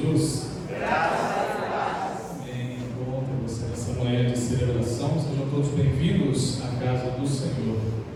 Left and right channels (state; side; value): identical; both; correlation 1.00